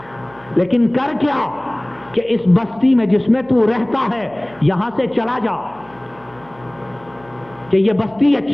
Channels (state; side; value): noise; right; hum, 26 dB below the sound